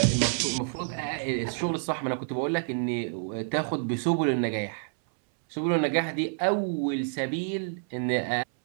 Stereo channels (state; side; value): silent; left; 59 dB below the other